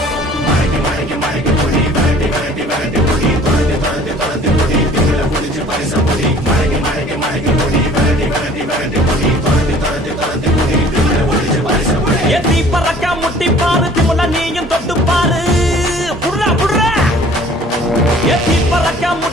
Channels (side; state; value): both; normal; correlation 0.51